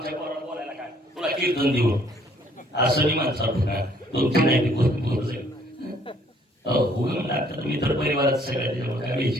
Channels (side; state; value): both; normal; correlation 0.62